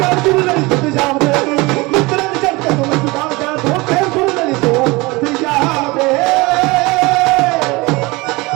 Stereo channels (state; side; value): quieter; left; 23.8 dB